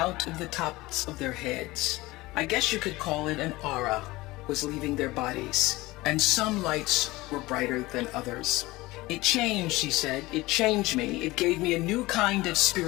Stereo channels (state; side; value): quieter; right; 20.1 dB